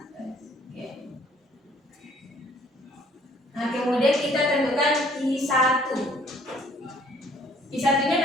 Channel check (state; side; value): normal; both; correlation 0.59